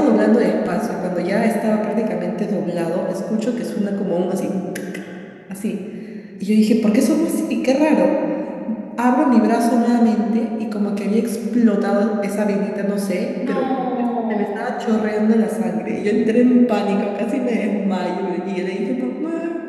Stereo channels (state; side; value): identical; both; correlation 1.00